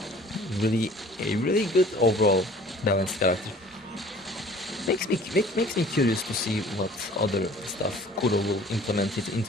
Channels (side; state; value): both; normal; correlation 0.49